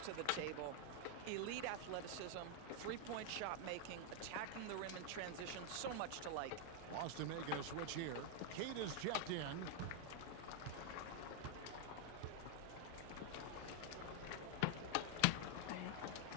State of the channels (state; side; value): different; both; correlation 0.00